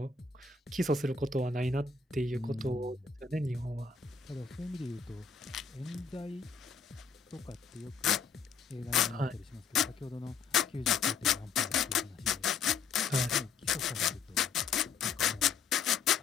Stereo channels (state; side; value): quieter; right; 5.4 dB